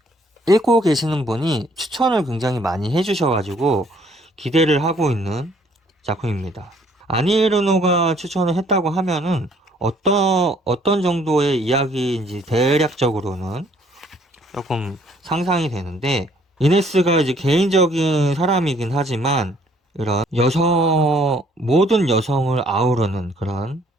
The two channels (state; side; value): normal; both; correlation 0.62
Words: 읽고 계시는 분이 추천을 굉장히 많이 해주셔가지고 기대를 하고 있는 작품입니다. 아니에르노가 추천을 했다고 하면은 어떤 정도의 이야기인지 대략적으로는 조금 상상이 되는데, 이네스가 이제 개인적인 사람이긴 하지만 이런 모든 여성을 아우르는 그런